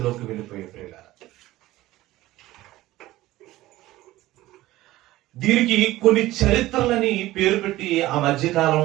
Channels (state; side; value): quieter; left; 16.7 dB